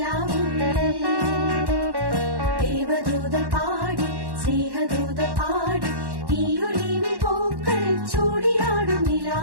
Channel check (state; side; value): late; left; 1.1 ms